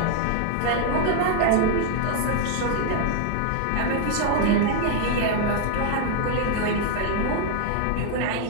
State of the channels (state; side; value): different; both; correlation 0.00